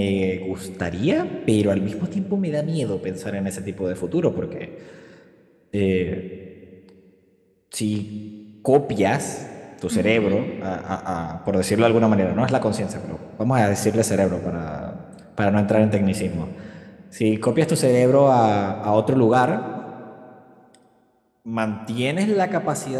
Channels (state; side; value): identical; both; correlation 1.00